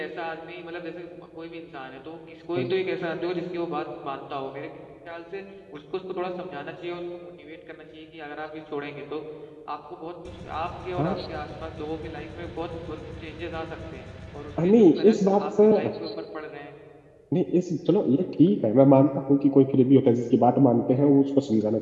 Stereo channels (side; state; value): both; identical; correlation 1.00